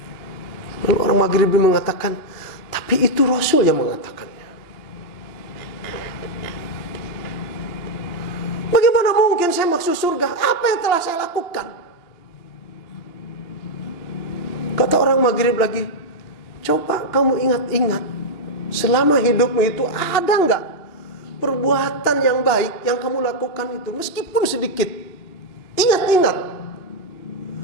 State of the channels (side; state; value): right; late; 2.9 ms